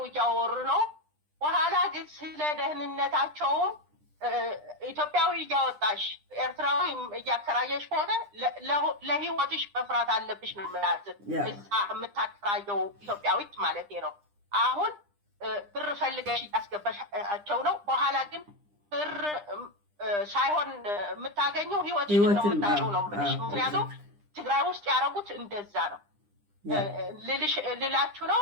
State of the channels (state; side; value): late; left; 9.9 ms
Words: እያወሩ ነው። በኋላ ግን ስለ ደህንነታቸውም ኢትዮጵያዊ እያወጣሽ ኤርትራዊ እያከራየሽ ከሆነ ለህይወትሽ መፍራት አለብሽ ነው የምላት። እዛ የምታከራየው ኢትዮጵያዊት ማለት ነው። አሁን ብር ፈልገሽ እያስገባሻቸው ነው። በኋላ ግን ብር ሳይሆን የምታገኘው ህይወትሽን ነው የምታጭው ነው የምልሽ። ምክንያቱም ትግራይ ውስጥ ያደረጉት እንደዛ ነው ልላችሁ ነው።